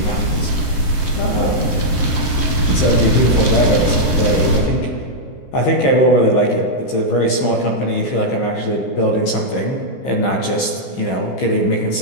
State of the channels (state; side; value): late; right; 15 ms